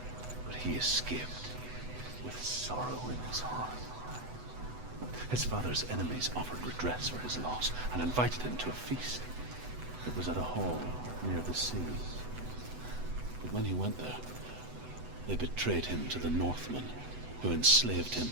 But he escaped with sorrow in his heart. His father's enemies offered redress for his loss and invited him to a feast. It was at a hall near the sea. But when he went there, they betrayed him to the Northmen, who enslaved him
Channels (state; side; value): late; left; 8.0 ms